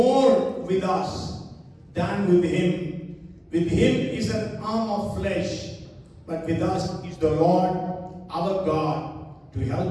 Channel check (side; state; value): both; identical; correlation 1.00